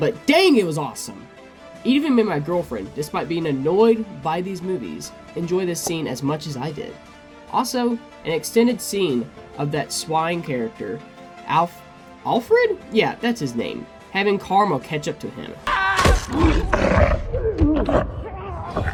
dang, it was awesome! It even made my girlfriend, despite being annoyed by these movies, enjoy this scene as much as I did. Also, an extended scene of that swine character, Alfred? Yeah, that's his name. Having Karma catch up to him.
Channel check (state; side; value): identical; both; correlation 1.00